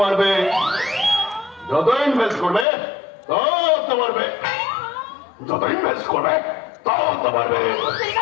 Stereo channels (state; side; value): drops out; right; at 2.7 s